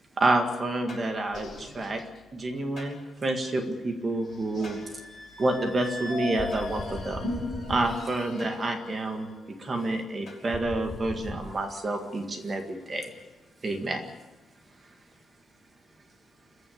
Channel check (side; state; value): both; normal; correlation 0.85